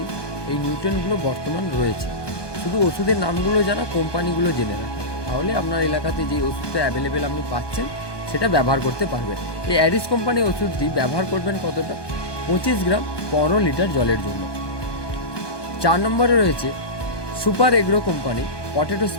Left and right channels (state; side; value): late; right; 1.2 ms